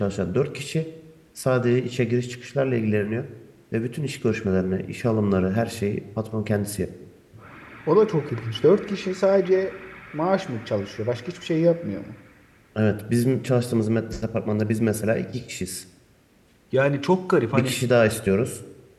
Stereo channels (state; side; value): identical; both; correlation 1.00